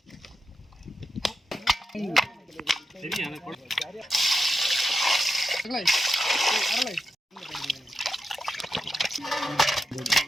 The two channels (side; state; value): both; normal; correlation 0.88